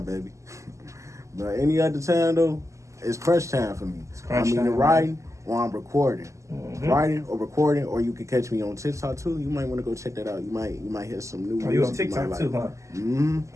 baby. But any other time, though, it's crunch time for me. I'm either writing or I'm recording. Mm-hmm. Writing or recording, or you can catch me on TikTok, too. You might want to go check that out. You might hear some new music. Oh, you on TikTok, too, huh?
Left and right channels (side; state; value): left; late; 0.15 ms